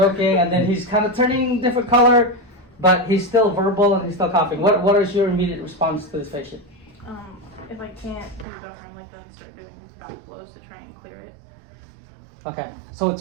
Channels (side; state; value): left; drops out; at 8.5 s